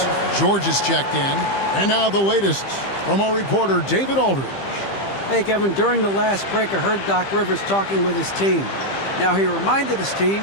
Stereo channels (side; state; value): right; late; 15 ms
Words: George is checked in. And now the latest from our reporter, David Aldridge. Hey, Kevin, during the last break, I heard Doc Rivers talking with his team. Now, he reminded his